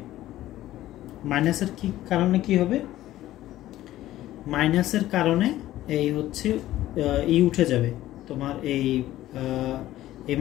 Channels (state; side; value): quieter; right; 14.6 dB